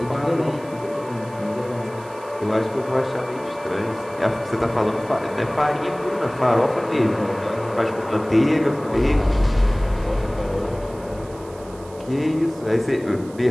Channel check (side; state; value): right; noise; hiss, 23 dB below the sound